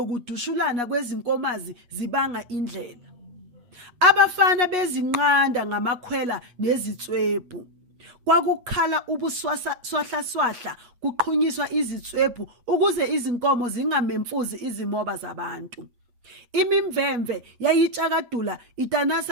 kwezinkomazi zibanga indlela. Abafana bezinqanda ngamakhwela nezitswebhu. Kwakukhala ubuswahla kuqhunyiswa izitswebhu ukuze izinkomo zingamemfuzi izimoba zabantu. Imimvemve yayitshakadula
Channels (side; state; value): left; late; 8.3 ms